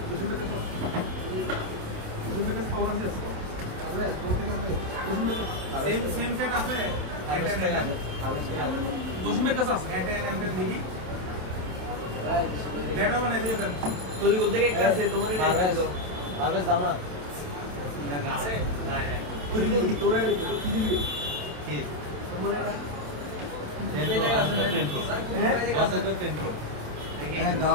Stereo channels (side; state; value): left; late; 27 ms